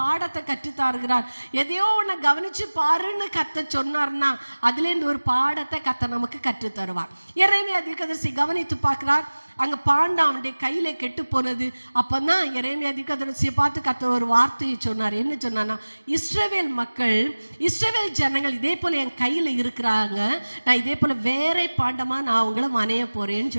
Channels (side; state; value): both; inverted; correlation -1.00